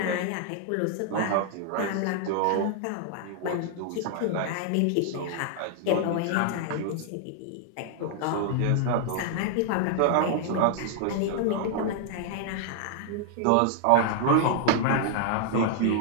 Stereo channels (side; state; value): both; different; correlation -0.01